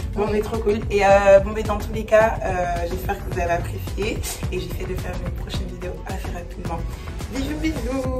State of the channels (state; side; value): identical; both; correlation 1.00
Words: Bon, mais trop cool. Et bon, mais dans tous les cas, j'espère que vous avez apprécié. Et j'essaie de faire une prochaine vidéo assez rapidement. Bisous,